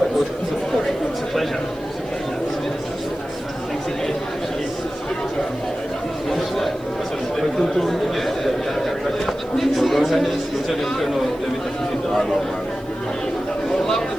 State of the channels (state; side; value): noise; right; hiss, 28 dB below the sound